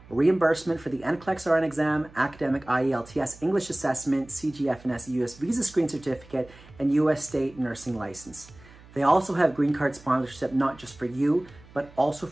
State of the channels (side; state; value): right; noise; hum, 22 dB below the sound